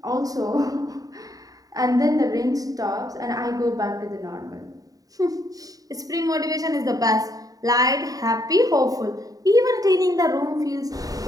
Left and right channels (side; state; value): left; late; 0.18 ms